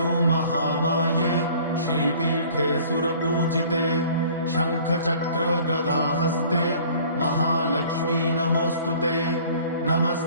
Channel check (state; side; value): inverted; both; correlation -0.51